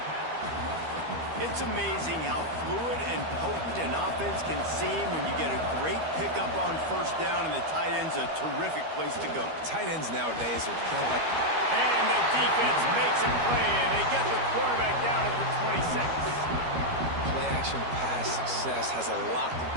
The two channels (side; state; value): left; late; 13 ms